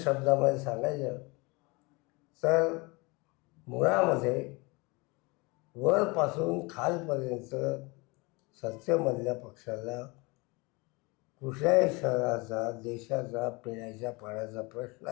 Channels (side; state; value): right; quieter; 26.5 dB